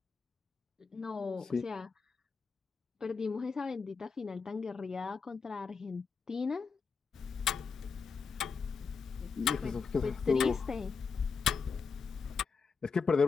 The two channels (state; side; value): quieter; right; 5.3 dB